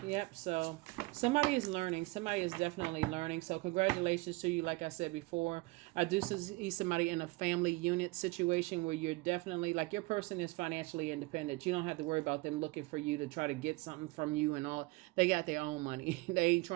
Yep, so somebody is learning. Somebody is definitely learning. So congratulations to you. Like I said before, I do see somebody in a family unit situation where you're definitely, like, your person is financially independent. You don't have to worry about them looking for you to try to get something from you and all. They got their own money. They ain't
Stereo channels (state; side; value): quieter; left; 23.6 dB